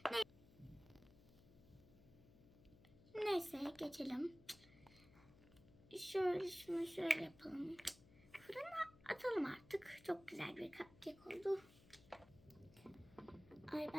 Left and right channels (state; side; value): noise; left; hum, 22 dB below the sound